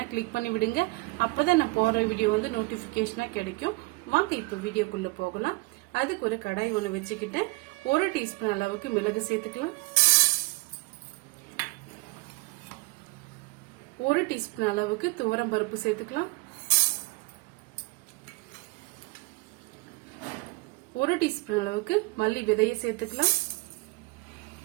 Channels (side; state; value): left; quieter; 25.4 dB